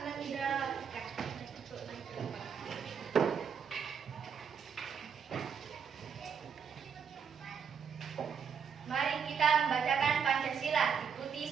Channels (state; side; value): quieter; left; 6.8 dB